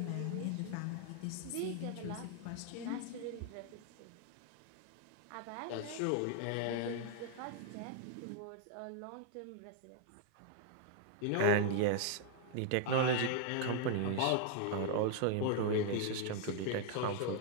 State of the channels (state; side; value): different; both; correlation 0.00